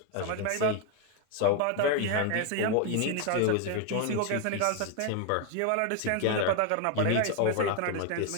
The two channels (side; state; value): both; different; correlation 0.01